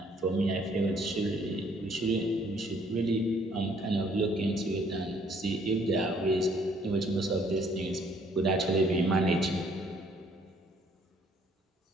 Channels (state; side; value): normal; both; correlation 0.63